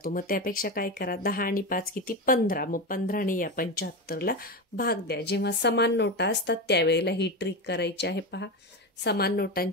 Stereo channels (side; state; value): both; normal; correlation 0.17